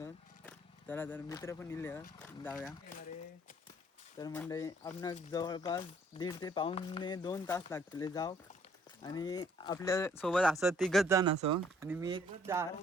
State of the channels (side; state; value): both; normal; correlation 0.62